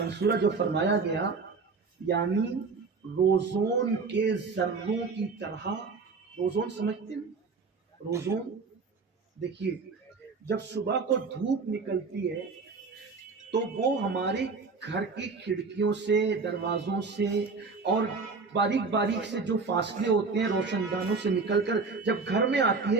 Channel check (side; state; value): left; quieter; 4.5 dB